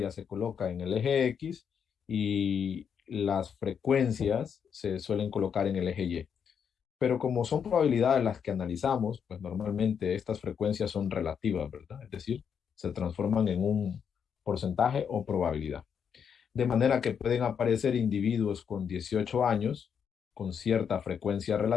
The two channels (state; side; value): quieter; right; 7.3 dB